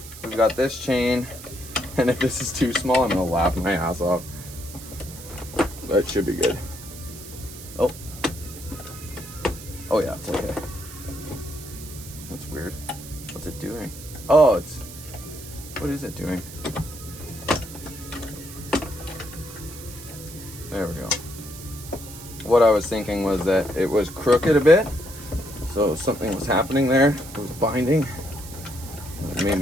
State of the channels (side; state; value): right; noise; hiss, 14 dB below the sound